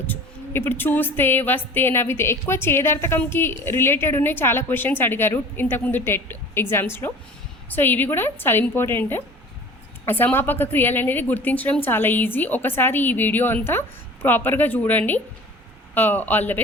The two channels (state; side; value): normal; both; correlation 0.42